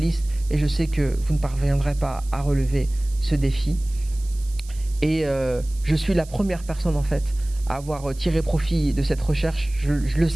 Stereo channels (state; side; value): noise; right; hiss, 21 dB below the sound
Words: et je sais que vous ne parviendrez pas à relever ce défi. Et je suis la première personne en fait à avoir tiré profit de cette recherche. Je le